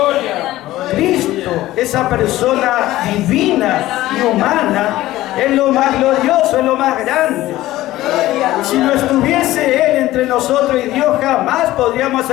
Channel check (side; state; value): right; quieter; 16.0 dB